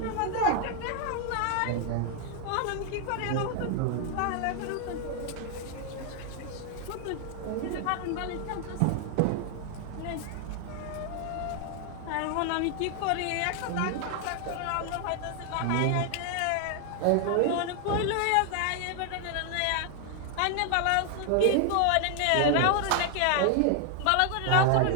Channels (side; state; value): both; different; correlation 0.00